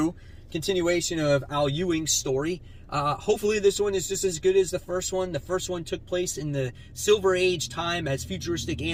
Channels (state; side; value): identical; both; correlation 1.00